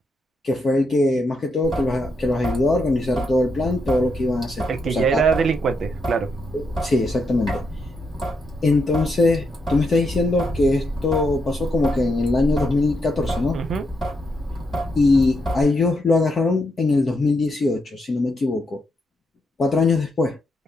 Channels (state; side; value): normal; both; correlation 0.80